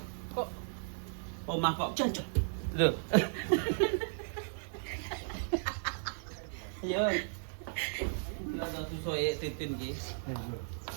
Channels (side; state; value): left; silent; 54 dB below the other